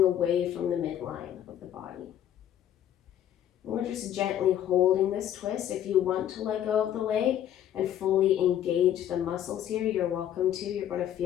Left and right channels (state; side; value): quieter; right; 10.8 dB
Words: away from the midline of the body. And we're just gently holding this twist. If you want to let go of the leg and fully engage the muscles here, you're welcome to. You're going to